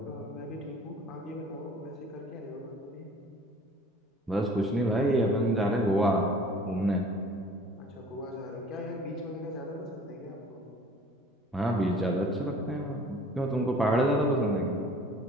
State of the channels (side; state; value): both; normal; correlation 0.49